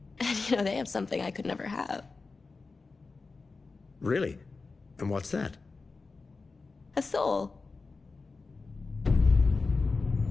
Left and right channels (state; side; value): quieter; right; 4.1 dB